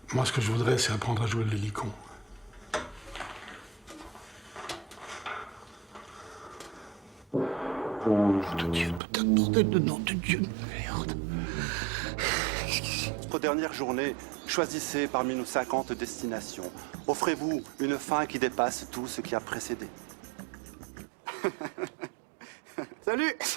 Moi, ce que je voudrais, c'est apprendre à jouer de l'hélicon. Nom de Dieu, putain de bordel de nom de Dieu de merde. Notre dernière journée, choisissez parmi nos 50 destinations. Offrez-vous une fin qui dépasse tout ce qui a précédé. Salut,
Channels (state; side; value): drops out; left; at 9.0 s